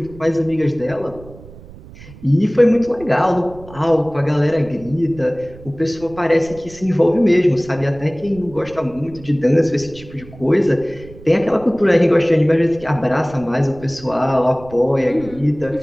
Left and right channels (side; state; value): right; noise; rumble, 19 dB below the sound